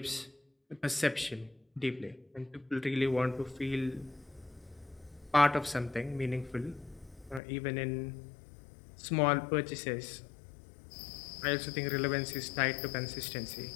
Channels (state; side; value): drops out; right; at 7.4 s